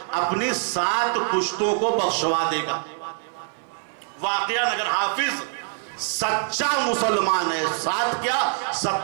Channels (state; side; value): silent; left; 60 dB below the other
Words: اپنی 7 پشتوں کو بخشوا دے گا. واقعہ اگر حافظ سچا مسلمان ہے، 7 کیا